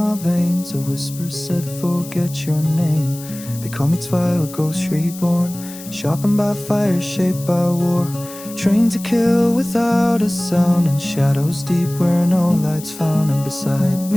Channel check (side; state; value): left; noise; hiss, 15 dB below the sound